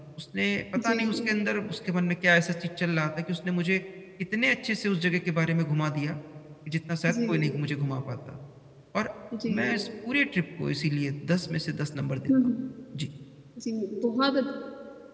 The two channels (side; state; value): both; identical; correlation 1.00